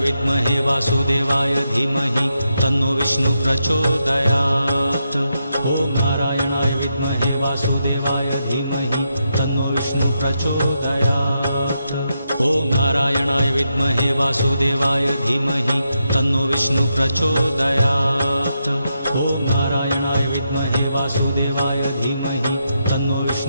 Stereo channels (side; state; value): both; inverted; correlation -0.84